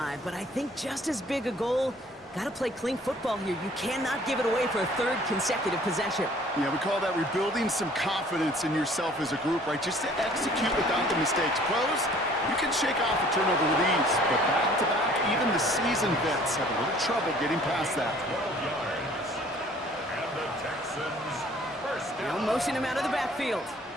but I think just as big a goal, got to play clean football here. You cannot give it away for a 3rd consecutive possession. Yeah, we call that rebuilding some confidence in yourself as a group, right? Just to execute without the mistakes. Pros, you can shake off a turnover with ease, but back-to-back, even the seasoned vets have a little trouble getting past that. 12 yards. And the Texans first They'll down. motion him out of the backfield.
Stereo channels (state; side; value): normal; both; correlation 0.54